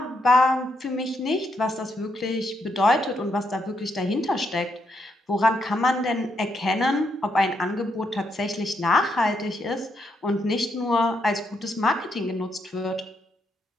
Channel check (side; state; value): both; normal; correlation 0.78